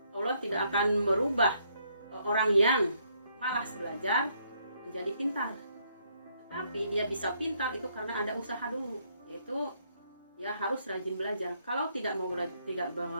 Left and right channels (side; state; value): both; inverted; correlation -0.71